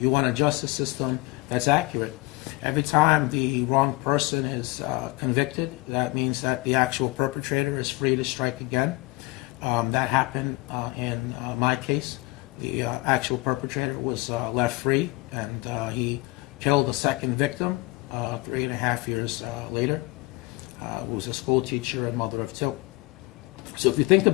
want a justice system that's accurate. Every time the wrong person is convicted, that means that the actual perpetrator is free to strike again. That happened in my case. The actual perpetrator was left free, and he killed a second victim 3.5 years later. Who was a school teacher and mother of two. So if you think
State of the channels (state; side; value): quieter; right; 23.5 dB